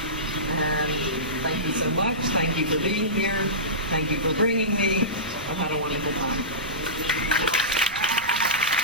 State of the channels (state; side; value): noise; right; rumble, 17 dB below the sound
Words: And thank you so much. Thank you for being here. Thank you for bringing me. I've had a wonderful time.